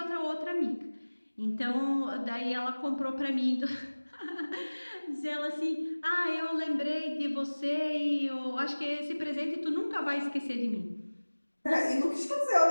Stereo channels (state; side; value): inverted; both; correlation -1.00